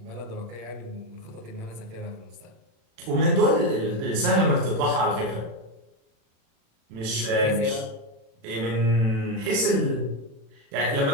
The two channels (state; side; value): late; left; 36 ms